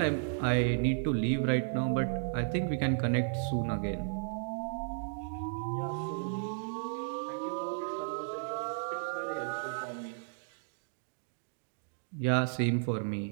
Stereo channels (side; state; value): left; silent; digital silence